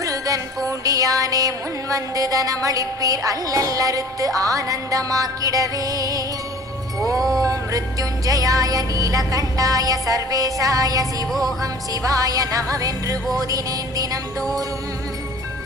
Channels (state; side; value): normal; both; correlation 0.46